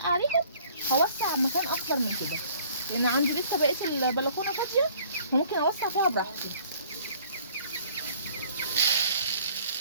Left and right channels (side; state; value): both; inverted; correlation -0.56